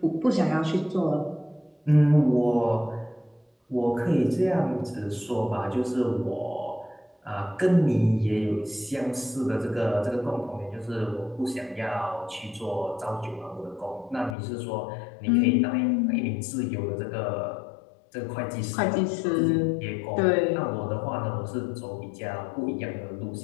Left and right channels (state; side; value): drops out; right; at 14.4 s